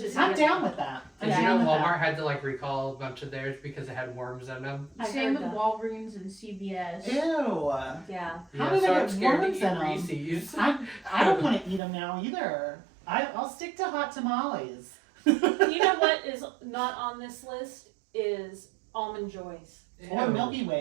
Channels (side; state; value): left; drops out; at 11.8 s